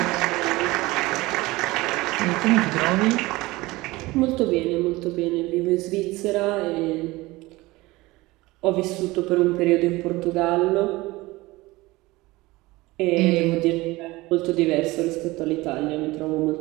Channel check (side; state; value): left; quieter; 20.5 dB